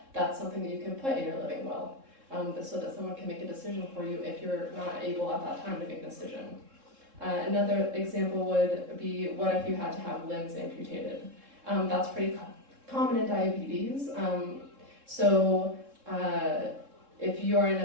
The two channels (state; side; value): late; left; 3.7 ms